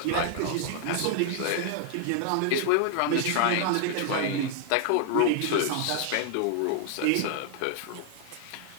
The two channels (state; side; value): different; both; correlation 0.00